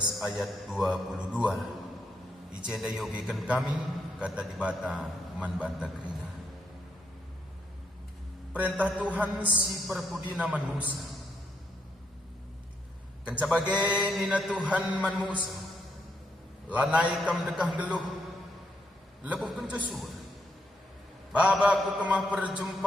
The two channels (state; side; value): normal; both; correlation 0.77